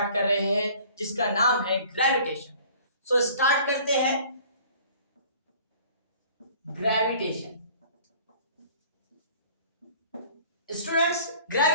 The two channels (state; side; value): inverted; both; correlation -0.50